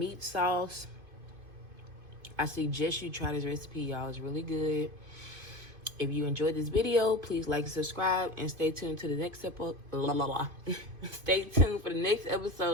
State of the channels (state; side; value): late; left; 2.5 ms